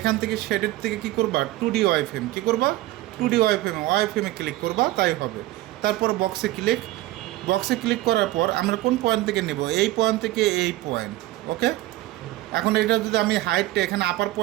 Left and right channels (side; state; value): left; quieter; 16.8 dB